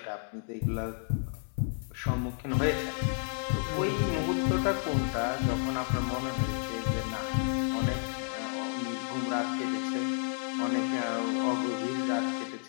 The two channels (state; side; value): silent; right; 57 dB below the other